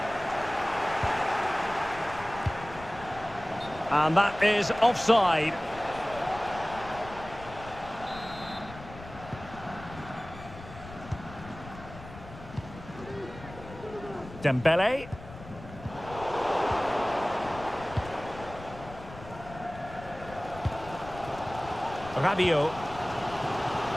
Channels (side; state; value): left; noise; rumble, 15 dB below the sound